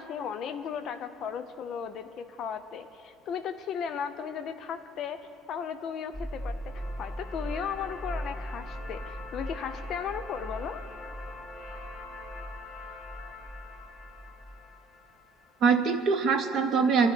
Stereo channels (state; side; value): normal; both; correlation 0.55